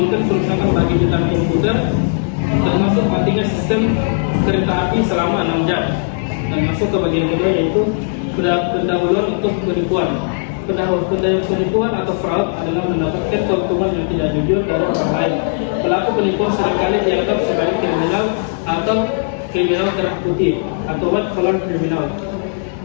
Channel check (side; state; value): right; silent; digital silence